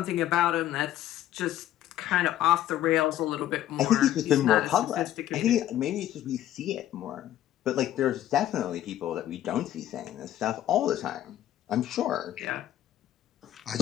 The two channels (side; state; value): right; quieter; 12.7 dB